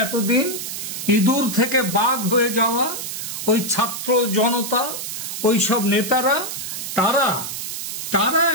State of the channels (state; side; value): noise; right; hiss, 6 dB below the sound